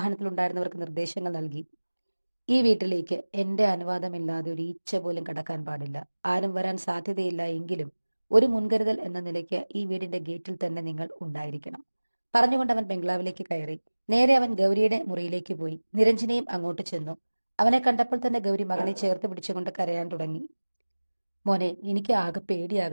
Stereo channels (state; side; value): inverted; both; correlation -1.00